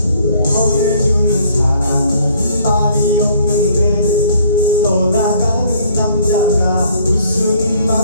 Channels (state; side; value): inverted; both; correlation -0.60